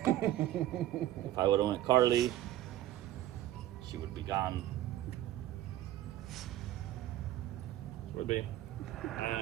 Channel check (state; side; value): quieter; left; 13.8 dB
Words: If I would have went Carly, she would be gone. Would be.